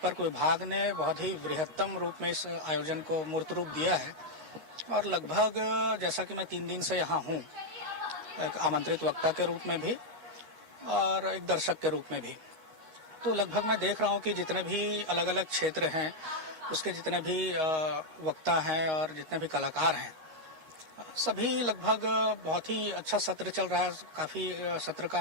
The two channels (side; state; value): left; late; 8.2 ms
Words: विभाग ने बहुत ही बृहत्तम रूप में इस आयोजन को मूर्त रूप दिया है और लगभग जैसा कि मैं 3 दिन से यहाँ हूँ, एक आमंत्रित वक्ता के रूप में भी और एक दर्शक के रूप में भी, तो लगभग मैं देख रहा हूँ कि जितने भी अलग अलग क्षेत्र हैं उसके जितने भी वक्ता हैं और जितने भी कलाकार हैं, सभी लगभग बहुत ही अच्छा सत्र चल रहा है। काफी सत्र का